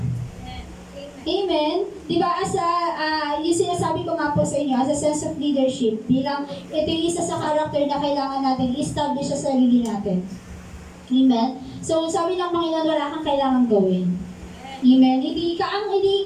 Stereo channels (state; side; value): identical; both; correlation 1.00